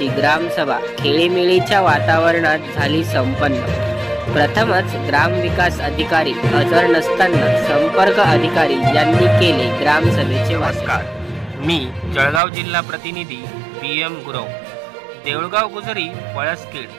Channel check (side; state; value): left; drops out; at 12.4 s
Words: ग्रामसभा खेळीमेळीच्या वातावरणात झाली संपन्न। प्रथमच ग्रामविकास अधिकारी हजर नसताना संपर्क अधिकारी यांनी केले ग्रामसभेचे नमस्कार, मी जळगाव जिल्हा प्रतिनिधी PM गुरव। देऊळगाव गुजरी पळसखेड